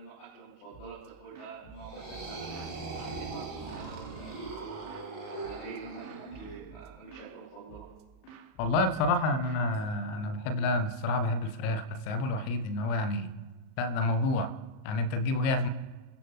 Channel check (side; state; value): right; late; 38 ms